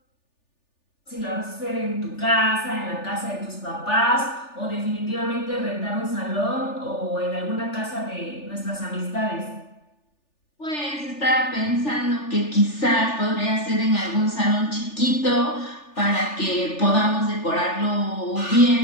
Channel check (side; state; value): right; late; 3.4 ms